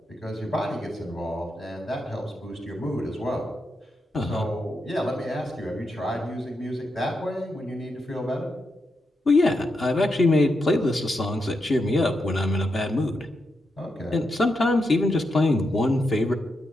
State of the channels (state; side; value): normal; both; correlation 0.85